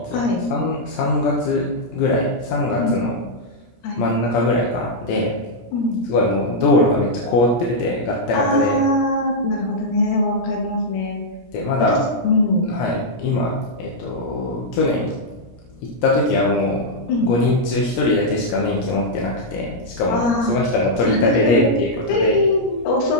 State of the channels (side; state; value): right; late; 17 ms